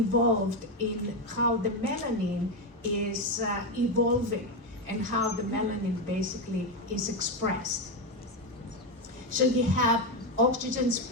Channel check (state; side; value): normal; both; correlation 0.10